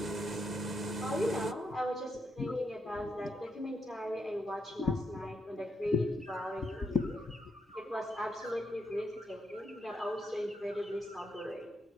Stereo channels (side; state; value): both; normal; correlation 0.80